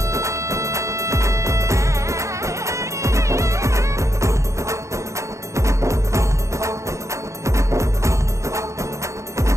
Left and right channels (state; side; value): late; left; 0.15 ms